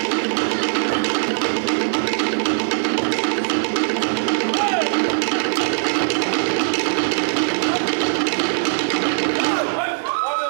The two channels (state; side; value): silent; left; digital silence